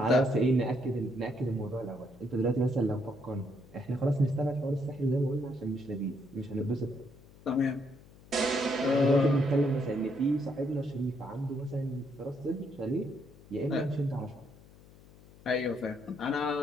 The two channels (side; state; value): left; noise; hum, 23 dB below the sound